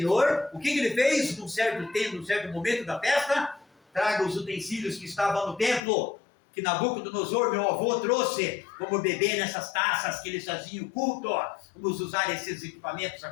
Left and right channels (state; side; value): drops out; right; at 5.8 s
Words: o que ele fez num certo tempo, num certo momento da festa? Traga os utensílios que estavam no templo, que Nabucodonosor, meu avô, trouxe, vamos beber nessas taças que eles faziam culto, vamos usar esses equipamentos